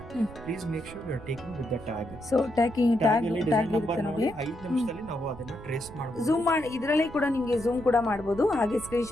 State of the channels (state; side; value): noise; right; rumble, 16 dB below the sound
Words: please make sure you are taking with the tag. So tag tag ಅಲ್ಲಿ ಡಿಸೈನ್ ನಂಬರ್ ಇರುತ್ತೆ ನೋಡಿ ನೋಡಿ. 5 ನಿಮಿಷದಲ್ಲಿ ನಾವು ಅದನ್ನ ಟ್ರೇಸ್ ಮಾಡಬಹುದು. ಝೂಮ್ ಮಾಡಿ ಇದರಲ್ಲಿ ಕೂಡ ನಿಮ್ಗೆ ಝೂಮ್ ಕೂಡ ಮಾಡಬಹುದು, ಹಾಗೆ ಸ್ಕ್ರೀನ್